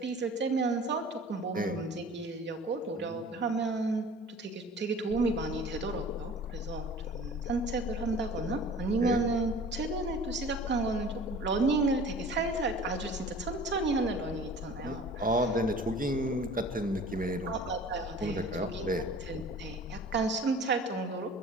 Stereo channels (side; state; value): both; normal; correlation 0.44